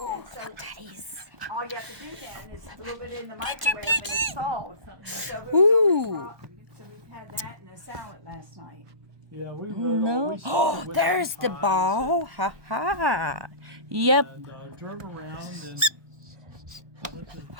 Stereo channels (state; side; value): late; left; 1.2 ms